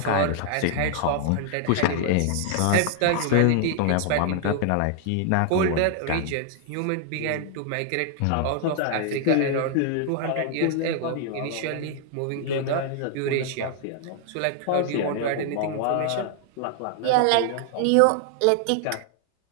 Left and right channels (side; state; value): both; different; correlation 0.00